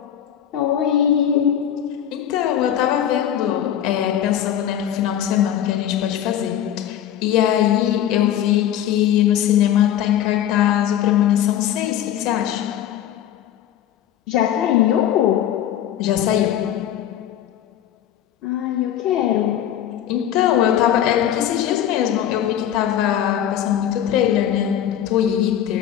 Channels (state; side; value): quieter; right; 10.6 dB